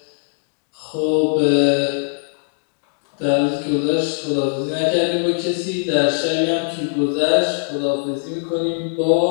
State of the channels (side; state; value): right; silent; digital silence